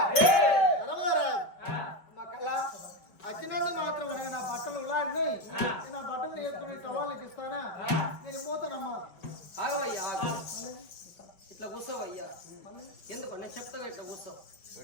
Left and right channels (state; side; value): late; right; 5.1 ms